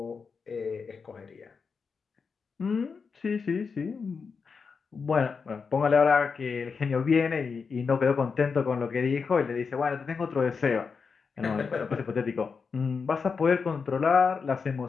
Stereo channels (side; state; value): right; quieter; 5.4 dB